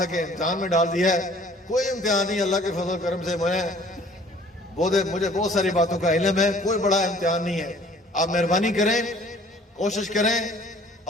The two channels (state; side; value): normal; both; correlation 0.54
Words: कि इम्तिहान में डाल दिया है, कोई इम्तिहान नहीं, अल्लाह के फजल करम से मुझे बहुत सारी बातों का इल्म है, कोई बड़ा इम्तिहान नहीं है। आप मेहरबानी करें, कोशिश करें